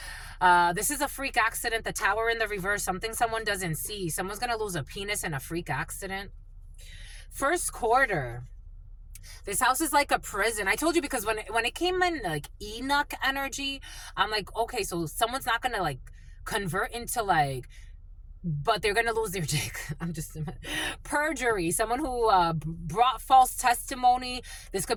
This is a freak accident. The tower in the reverse. Something someone doesn't see. Someone's going to lose a penis in a freak accident. First quarter. This house is like a prison. I told you because when it came in like Enoch energy, I'm like, okay, so someone's not going to like convert into like, but they're going to lose their dick. I'm just... Perjury. Someone who brought false testimony. This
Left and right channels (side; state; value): both; identical; correlation 1.00